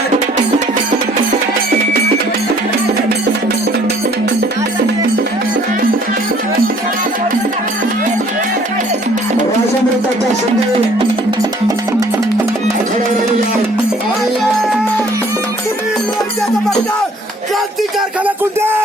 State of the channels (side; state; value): both; normal; correlation 0.58